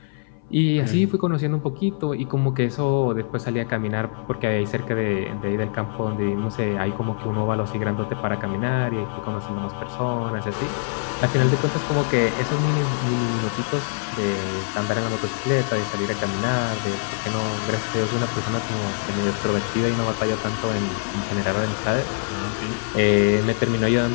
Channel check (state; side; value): silent; right; 60 dB below the other